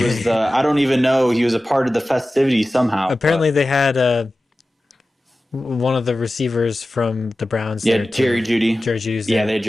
okay. I don't even know, he was a part of the festivity somehow, Apparently, but they had one of the receivers from the Browns yeah, there too. Jerry Judy. Jerry Judy's Yeah, there. they had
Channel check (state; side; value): normal; both; correlation 0.95